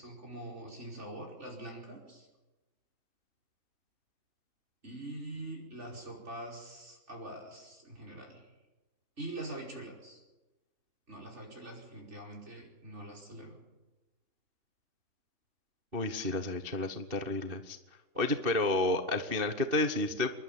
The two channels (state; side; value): late; left; 2.7 ms